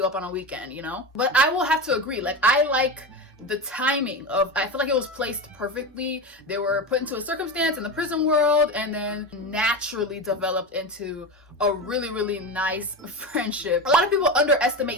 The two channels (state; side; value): normal; both; correlation 0.22